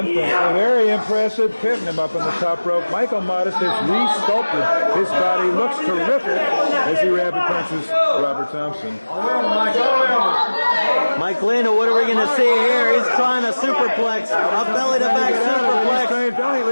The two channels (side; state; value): both; inverted; correlation -1.00